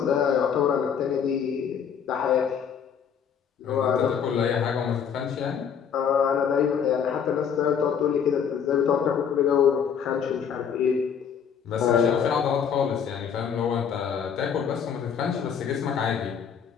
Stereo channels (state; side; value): quieter; right; 7.5 dB